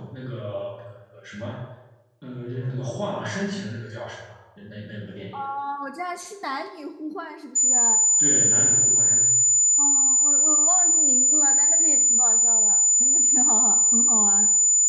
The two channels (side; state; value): both; identical; correlation 1.00